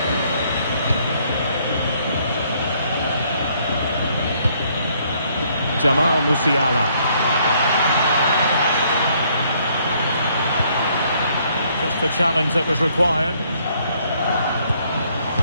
Jamal Musiala. Just the challenge that was required.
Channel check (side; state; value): both; inverted; correlation -0.67